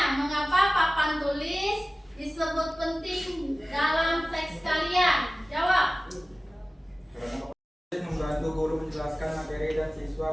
mengapa papan tulis disebut penting dalam teks kalian? Jawab. Membantu guru menjelaskan materi dan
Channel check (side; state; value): both; normal; correlation 0.97